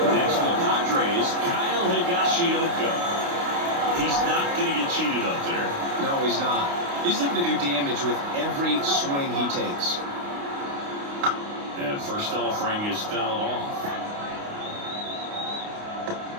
Next for the Padres, Kyle Higashioka. He's not going to get cheated up there. No, he's not. He's looking to do damage with every swing he takes. And first offering is fouled off.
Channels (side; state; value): left; late; 29 ms